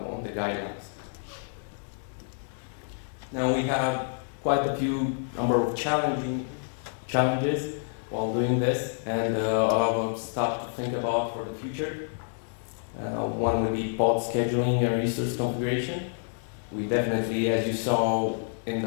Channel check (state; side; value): silent; right; 59 dB below the other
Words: the guidelines. Now we have quite a few number of challenges while doing this, and a lot of stuff to think about for the future. One would be pod scheduling and resource configuration. We definitely, as you saw in